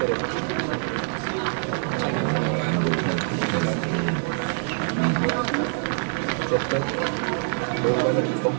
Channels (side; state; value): left; silent; digital silence